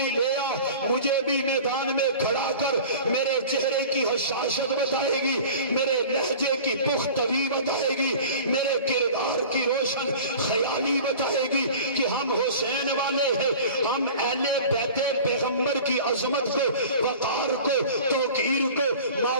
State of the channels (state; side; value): inverted; both; correlation -0.41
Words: لے آ، مجھے بھی میدان میں کھڑا کر، میرے چہرے کی حشاشت بتائے گی، میرے لہجے کی پختگی بتائے گی، میرے کردار کی روشن خیالی بتائے گی کہ ہم حسین والے ہیں۔ ہم اہل بیت پیغمبر کی عظمت کو، وقار کو، توقیر کو،